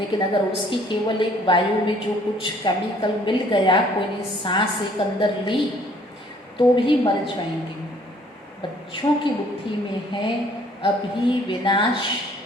अगर उसकी केवल एक वायु में जो कुछ केमिकल मिल गया, कोई ने सांस एक अंदर ली तो भी मर जाएंगे। बच्चों की बुद्धि में है अभी विनाश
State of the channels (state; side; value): normal; both; correlation 0.59